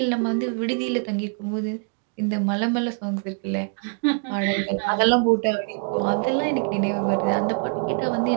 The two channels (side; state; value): left; quieter; 39.9 dB